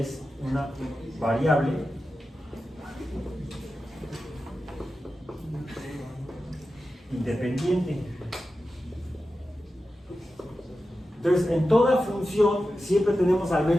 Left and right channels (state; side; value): normal; both; correlation 0.92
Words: una variable independiente. Entonces, en toda función siempre tenemos al